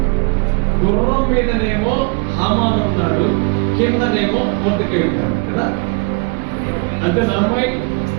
గుర్రం మీదనేమో హామాను ఉన్నాడు, కిందనేమో మొర్దెకై ఉన్నాడు కదా. అంతే అమ్మాయి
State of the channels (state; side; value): quieter; left; 31.7 dB